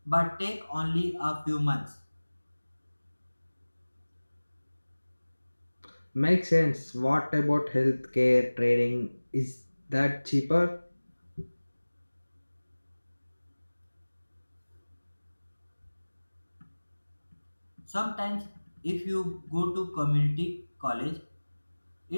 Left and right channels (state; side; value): inverted; both; correlation -1.00